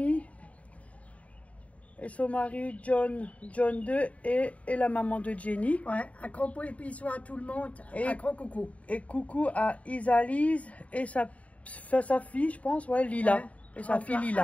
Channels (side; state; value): right; late; 0.067 ms